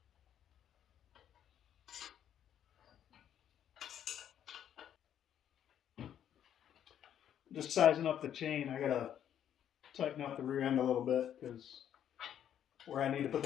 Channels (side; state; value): right; quieter; 9.9 dB